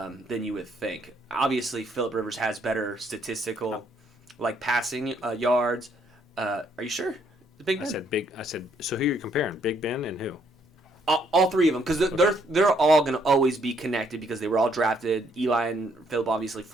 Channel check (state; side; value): normal; both; correlation 0.69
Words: than you would think. Obviously, Phillip Rivers has better statistical, like passing yards. Are you sure? Big Ben. I said. So who are you comparing? Big Ben and who? All 3 of them, because they're all going to always be connected because they were all drafted. Eli and Phillip obviously